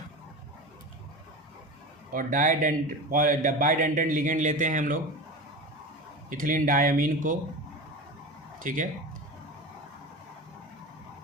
और बाइडेंटेंट लिगेंड लेते हैं हम लोग इथिलीन डायमीन को। ठीक है,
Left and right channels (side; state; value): both; normal; correlation 0.28